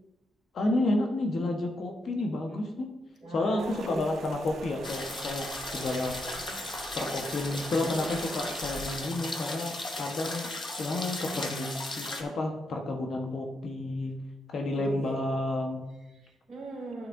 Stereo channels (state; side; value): normal; both; correlation 0.81